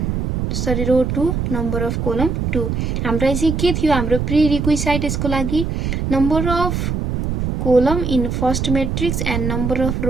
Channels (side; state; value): right; noise; rumble, 1 dB below the sound